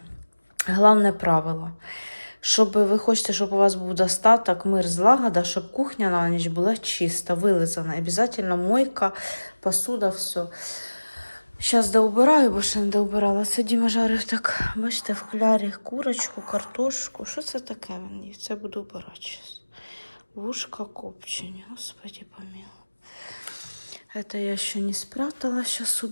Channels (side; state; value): both; inverted; correlation -1.00